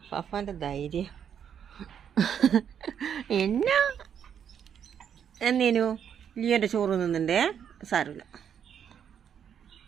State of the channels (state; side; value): quieter; left; 8.4 dB